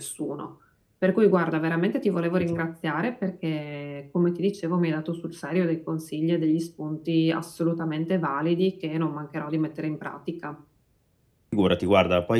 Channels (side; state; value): both; identical; correlation 1.00